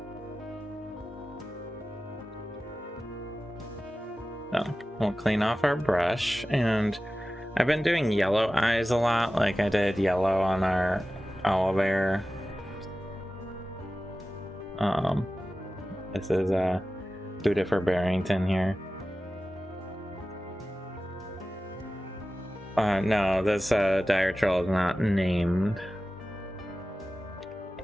So we'll clean off our brush, and I've been doing yellow eyes a lot, like I did yellow on our owlbear. This is Buddha for Barrington here. No, this dire troll is not named.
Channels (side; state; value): both; normal; correlation 0.95